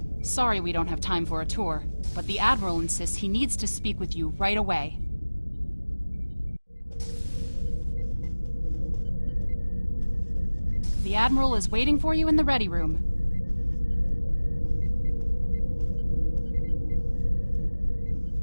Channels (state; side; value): inverted; both; correlation -1.00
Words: Sorry we don't have time for a tour, but the Admiral insists he needs to speak with you right away. The Admiral is waiting for you in the ready room.